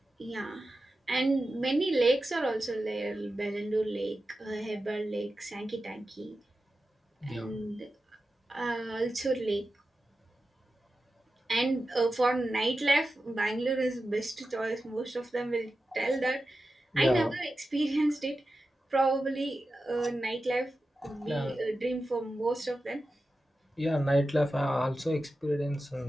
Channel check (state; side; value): normal; both; correlation 0.92